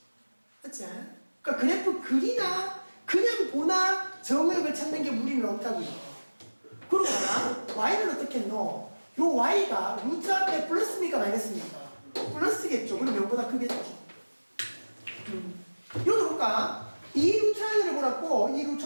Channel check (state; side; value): inverted; both; correlation -1.00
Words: 맞지? 그러니까 그래프 그리나 그냥 보나 정의역을 찾는 게 무리는 없다고요. 그러거나 y는 어떻게 했노? 요 y가 루트 앞에 플러스입니까 마이너스입니까? 플러스겠죠. 그럼 0보다 크겠죠. 요도 볼까? 이 루트 안을 보라고, 이 루트